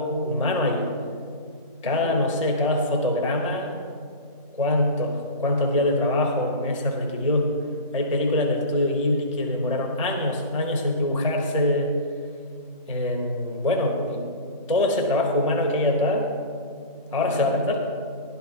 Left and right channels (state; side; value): inverted; both; correlation -0.30